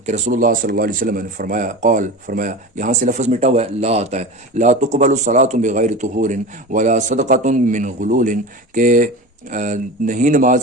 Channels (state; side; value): normal; both; correlation 0.30